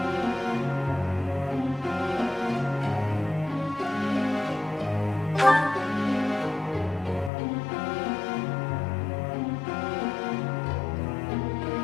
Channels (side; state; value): right; drops out; at 7.3 s